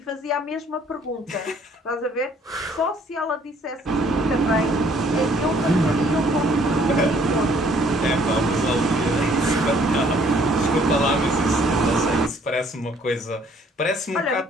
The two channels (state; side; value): normal; both; correlation 0.61